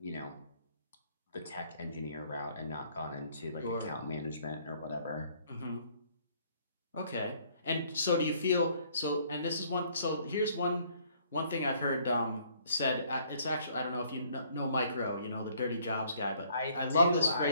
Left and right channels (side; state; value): both; inverted; correlation -0.62